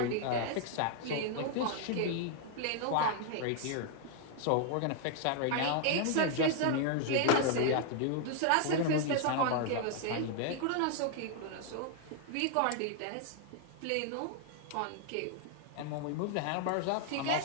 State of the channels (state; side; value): different; both; correlation 0.00